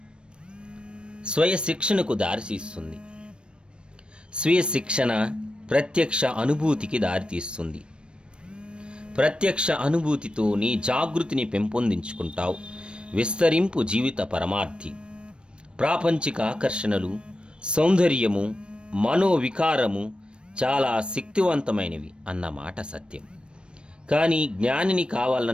స్వయ శిక్షణకు దారితీస్తుంది. స్వీయ శిక్షణ ప్రత్యక్ష అనుభూతికి దారితీస్తుంది. ప్రత్యక్ష అనుభూతితో నీ జాగృతిని పెంపొందించుకుంటావు. విస్తరింపు జీవిత పరమార్థి. ప్రాపంచిక ఆకర్షణలు, సౌందర్యము, మనోవికారము చాలా శక్తివంతమైనవి అన్నమాట సత్యం. కానీ జ్ఞానిని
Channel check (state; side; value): late; left; 0.056 ms